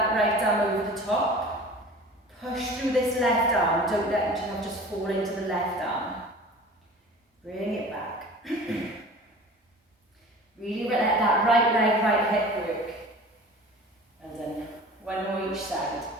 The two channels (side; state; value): both; normal; correlation 0.40